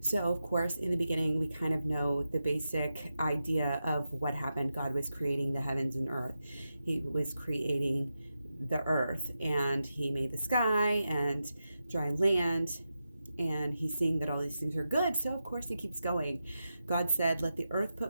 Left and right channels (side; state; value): both; inverted; correlation -0.90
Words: So, of course, in the beginning, we kind of know the basic idea of what happened. God was creating the heavens and earth. He was creating the earth, and he made the sky and dry land, and he's seeing that all these things are good, so of course he keeps going. God said, let the earth